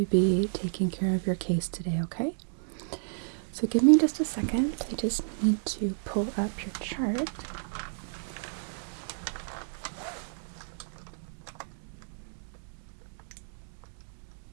be taking care of your case today, okay? So give me just a second. I just need to pull up your chart.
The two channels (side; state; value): left; silent; digital silence